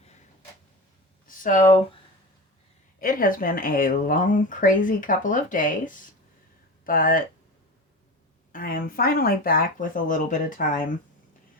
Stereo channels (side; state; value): both; normal; correlation 0.28